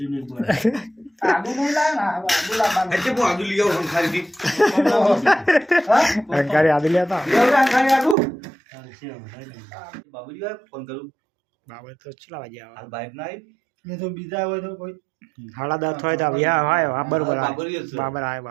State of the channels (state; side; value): drops out; left; at 8.2 s